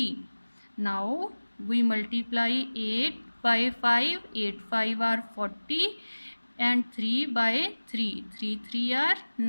Now we multiply 8 by 5. 8 5 are 40 and 3 by 3. 3 3 are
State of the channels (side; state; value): both; inverted; correlation -1.00